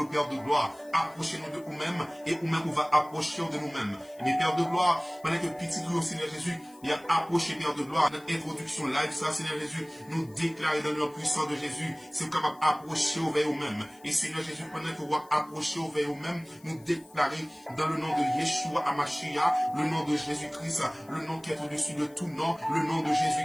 Père de gloire, approchez-nous de nous-mêmes et nous-mêmes on va approcher de nous-mêmes. Mais Père de gloire, pendant que petit tout au Seigneur Jésus, il a approché Père de gloire. Notre introduction live, ça Seigneur Jésus, nous déclarer dans le nom puissant de Jésus, c'est capable d'approcher vers nous-mêmes. Et Seigneur Jésus, pendant que vous approcher vers nous-mêmes, nous déclarer dans le nom de Yeshua Amashia, le nom de Jésus-Christ, le nom qui est au-dessus de tout nom, le nom de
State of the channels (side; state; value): left; noise; hiss, 26 dB below the sound